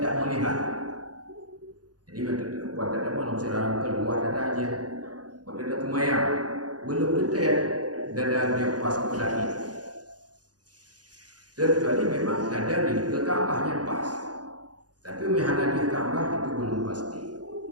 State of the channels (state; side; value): late; left; 0.69 ms